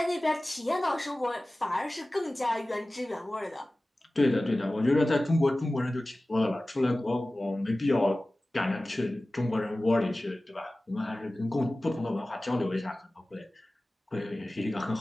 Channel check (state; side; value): normal; both; correlation 0.97